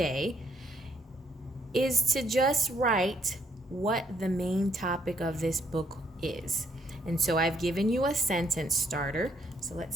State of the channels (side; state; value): both; normal; correlation 0.70